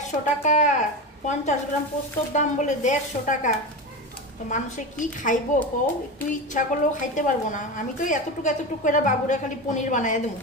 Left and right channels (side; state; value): both; normal; correlation 0.22